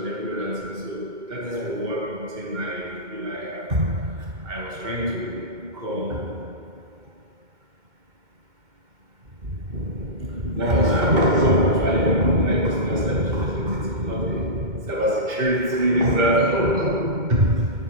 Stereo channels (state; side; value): late; left; 2.2 ms